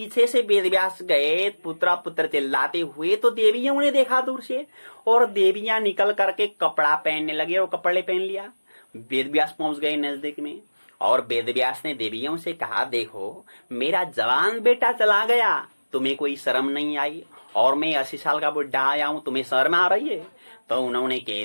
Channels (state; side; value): inverted; both; correlation -1.00